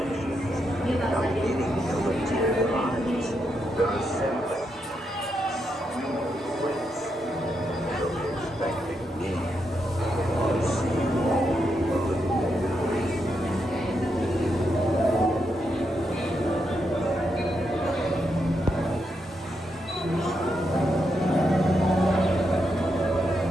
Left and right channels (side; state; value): both; normal; correlation 0.82